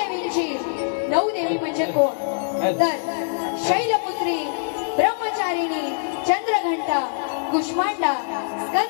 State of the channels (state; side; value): silent; right; 57 dB below the other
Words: नऊ देवी म्हणजे कोण तर शैलपुत्री ब्रह्मचारिणी चंद्रघंटा कुष्मांडा